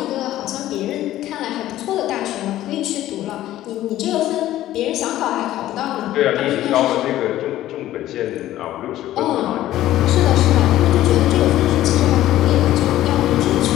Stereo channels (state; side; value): quieter; right; 14.0 dB